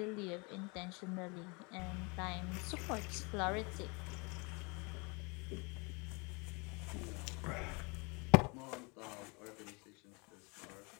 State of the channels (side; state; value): right; quieter; 30.0 dB